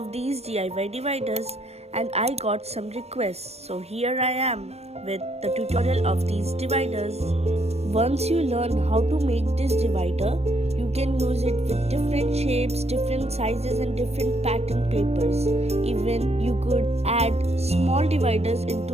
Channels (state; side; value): late; left; 0.31 ms